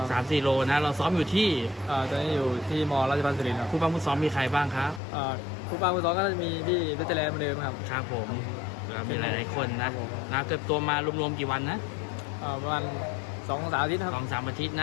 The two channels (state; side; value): drops out; right; at 5.0 s